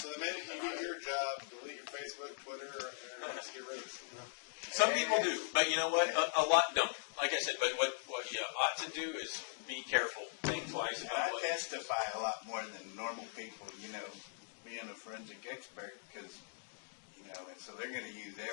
the minute you do your job, delete your Facebook, Twitter, or get rid of it. Some people do, but you know what? A lot don't. Like I said, but what you ought to do is be careful. Think twice about what. I testify a lot more than normal people, being a forensic expert, because, and so they're going to use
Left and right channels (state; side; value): silent; right; digital silence